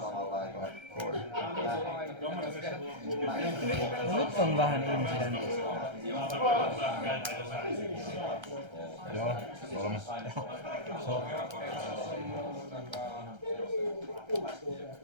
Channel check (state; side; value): late; left; 1.3 ms